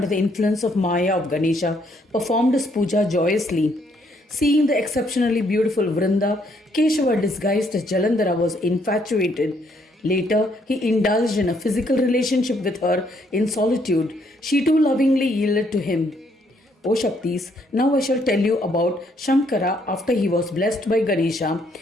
the influence of Maya of Ganesha, performed his puja joyously. Seeing the exceptionally beautiful Vrinda, Keshava, disguised as Jalandhara, was infatuated. Later, he indulged in a physical relationship with her in solitude. She too lovingly yielded to him. O Shaktis, now I shall tell you about Shankara after he was blessed by Ganesha,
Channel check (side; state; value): both; normal; correlation 0.70